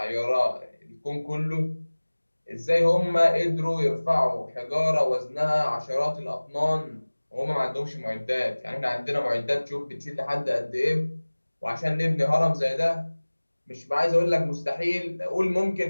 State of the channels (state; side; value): inverted; both; correlation -1.00